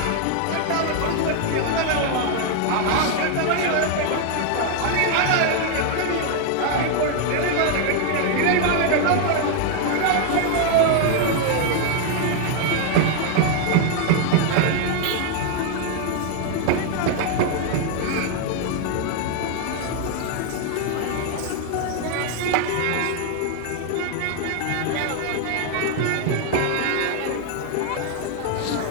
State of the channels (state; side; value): different; both; correlation 0.00